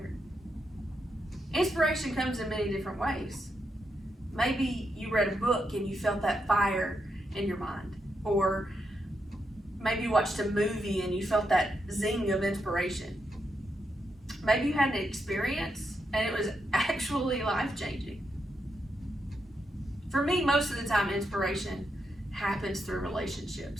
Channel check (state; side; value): normal; both; correlation 0.82